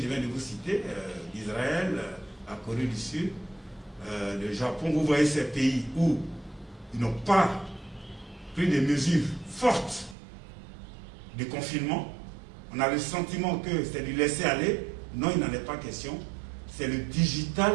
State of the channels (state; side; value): drops out; left; at 10.2 s